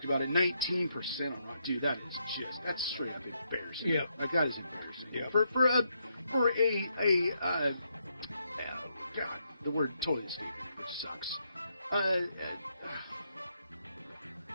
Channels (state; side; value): inverted; both; correlation -0.79